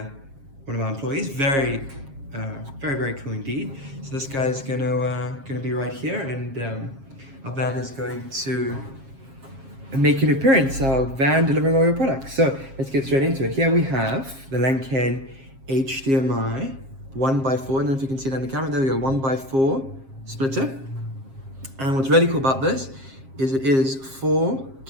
one of our employees. Very cool indeed. So this guy's gonna be right here, and our van is going to make an appearance. Our van delivering all your products. So let's get straight into it. Here we have the Lenkeng HDMI 1x4. I don't know if you can see that in the camera. There we go, 1x4 splitter. And what's really cool about this is it is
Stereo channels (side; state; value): left; late; 7.4 ms